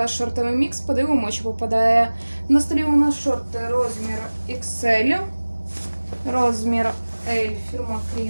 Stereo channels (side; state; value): both; inverted; correlation -1.00